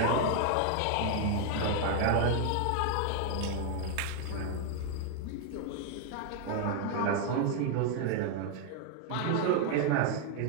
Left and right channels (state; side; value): different; both; correlation 0.00